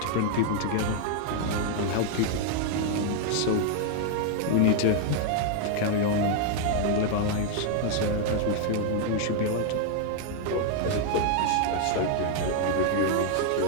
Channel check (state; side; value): different; both; correlation 0.00